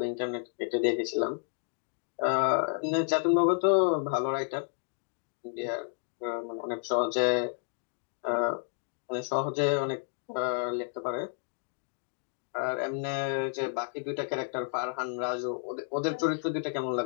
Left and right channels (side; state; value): right; silent; 57 dB below the other